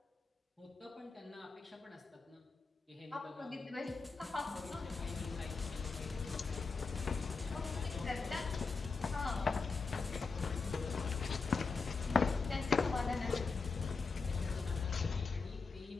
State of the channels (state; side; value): quieter; right; 4.6 dB